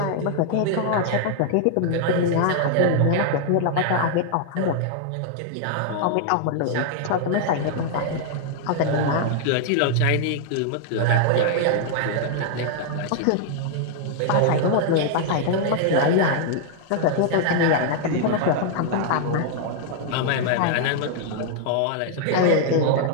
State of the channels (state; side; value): different; both; correlation -0.01